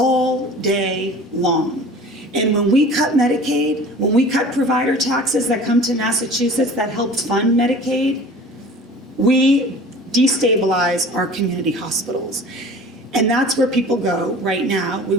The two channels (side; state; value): both; normal; correlation 0.42